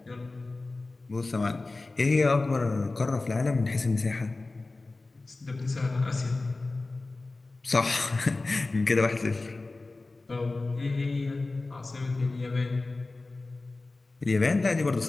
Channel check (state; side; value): quieter; right; 3.3 dB